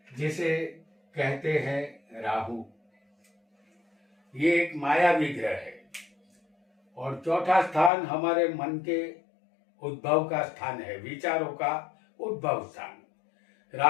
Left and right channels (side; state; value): right; drops out; at 7.9 s